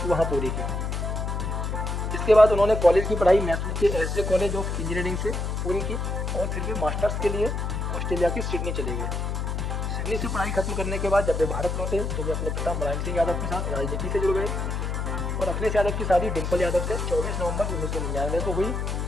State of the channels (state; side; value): noise; left; hum, 2 dB below the sound